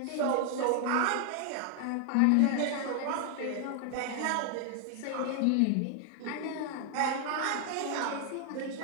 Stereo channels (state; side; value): different; both; correlation 0.00